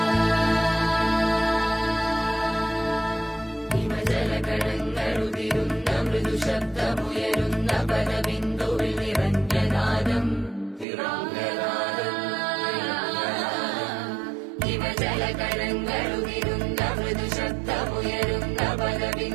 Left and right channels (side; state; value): left; drops out; at 10.9 s